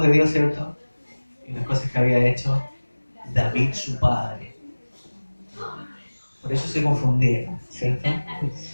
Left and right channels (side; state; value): both; inverted; correlation -1.00